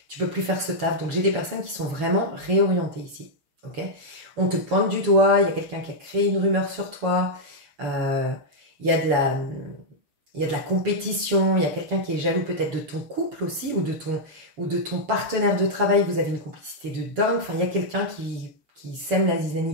faire ce taf. Donc, j'ai des personnes qui sont vraiment réorientées ici. Ok, on te pointe du doigt, il y a quelqu'un qui a créé une rumeur sur toi, il y a de la compétition, il y a quelqu'un qui est jaloux peut-être de ton couple aussi, ou de ton partenaire de travail, vous avez une complicité de dingue. Enfin, il y a quelqu'un qui sème la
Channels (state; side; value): late; left; 7.1 ms